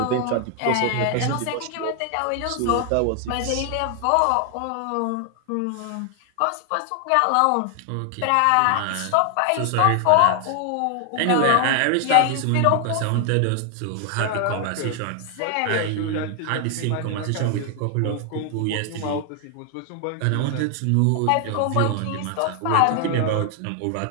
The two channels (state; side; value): different; both; correlation 0.00